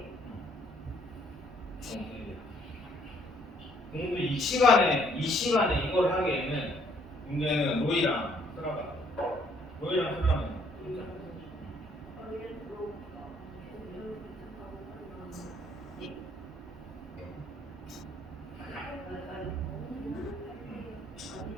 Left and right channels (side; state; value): both; normal; correlation 0.65